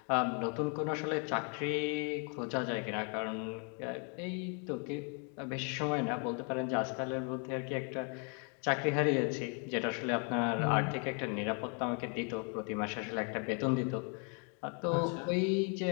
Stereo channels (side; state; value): right; quieter; 38.5 dB